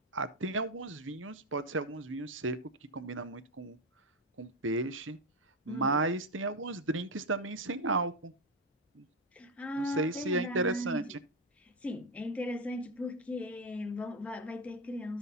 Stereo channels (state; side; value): normal; both; correlation 0.09